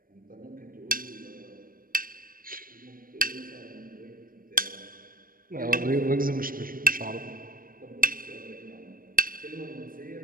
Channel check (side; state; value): left; late; 0.41 ms